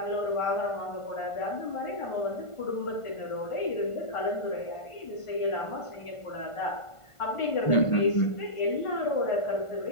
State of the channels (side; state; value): right; late; 1.5 ms